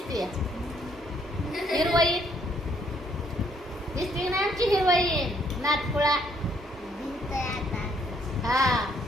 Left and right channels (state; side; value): normal; both; correlation 0.68